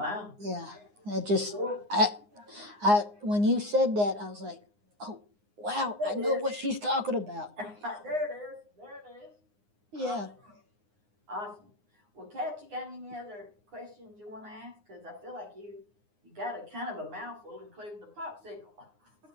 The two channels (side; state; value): left; late; 9.7 ms